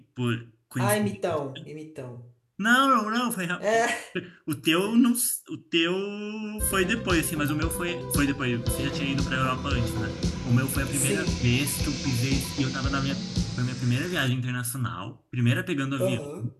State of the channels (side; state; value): both; identical; correlation 1.00